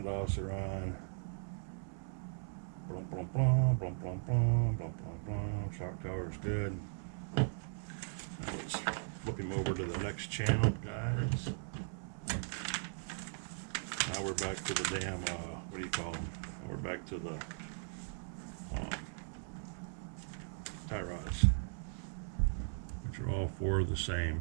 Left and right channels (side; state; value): left; silent; digital silence